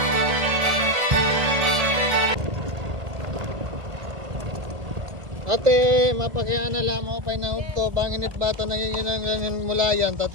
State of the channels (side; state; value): left; late; 1.7 ms